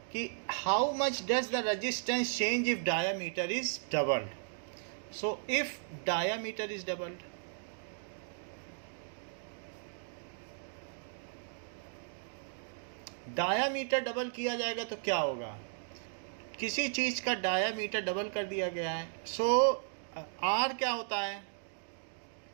कि how much does the resistance change if diameter is doubled. So if diameter is doubled, diameter double किया जाएगा तो क्या होगा? किसी चीज़ का डायामीटर डबल कर दिया गया है। सो आर क्या होता है?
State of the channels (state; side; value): silent; left; digital silence